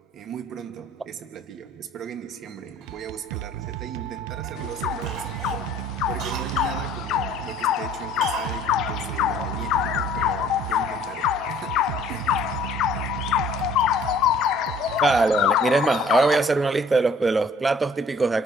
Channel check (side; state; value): both; normal; correlation 0.55